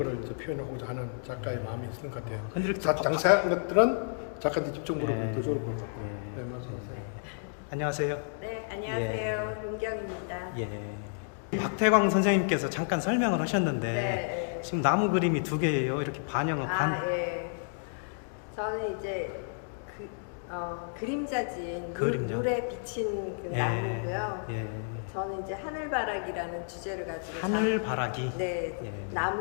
이제 표현하고자 하는 작가의 마음이 있는 것 같아요. 근데 이렇게 자세한 것들은 작가들 직접 물어보죠. 안녕하세요. 네, 안녕하세요. 윤경입니다. 박태광 선생님께서 잠깐 설명을 하셨는데 네. 지금 나무 그림이 2개예요. 이렇게 반영은 저는 이제 그림자진 그림자. 물에 비친 그 나무고요. 저는 이제 하늘바라기라는 주제를 가지고 하늘바라기.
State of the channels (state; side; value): silent; right; digital silence